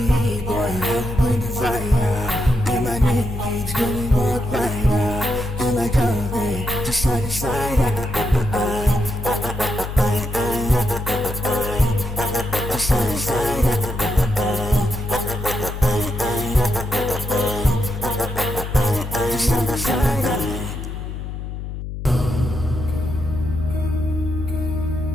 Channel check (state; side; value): noise; left; hum, 7 dB below the sound